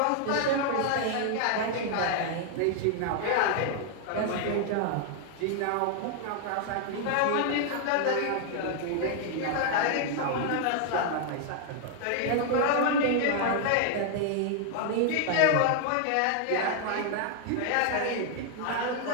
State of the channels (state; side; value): different; both; correlation 0.00